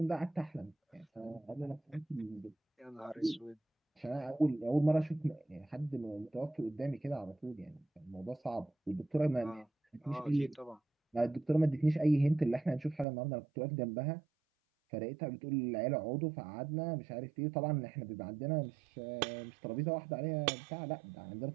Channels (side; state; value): left; drops out; at 13.1 s